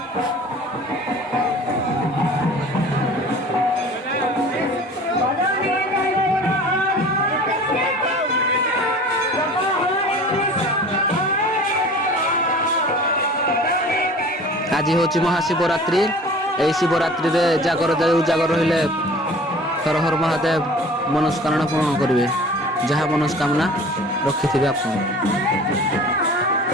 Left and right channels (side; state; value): both; normal; correlation 0.43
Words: ଆଜି ହେଉଛି ମହାଶିବରାତ୍ରି। ଏହି ଶିବରାତ୍ରିରେ ଜାଗର ରହିଲେ ହର ହର ମହାଦେବ ମନସ୍କାମନା ପୂରଣ କରିବେ। ଯାହା ମନସ୍କାମନା ରଖିଥିବେ ଆପଣ।